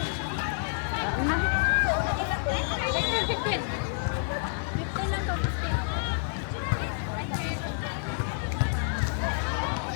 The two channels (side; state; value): right; silent; digital silence